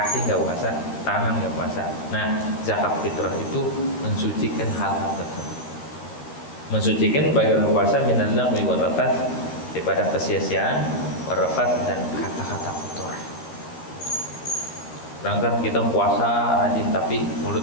nggak puasa, tangan nggak puasa. Nah, zakat fitrah itu mensucikan hal-hal tersebut, mensucikan bagi orang puasa minal lagwi wal rafath, daripada kesia-siaan, warafat, dan kata-kata kotor. Sedangkan kita puasa rajin tapi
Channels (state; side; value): late; right; 13 ms